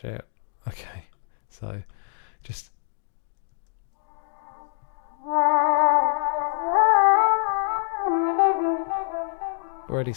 it. Okay. So just... Already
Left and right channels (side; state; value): right; silent; digital silence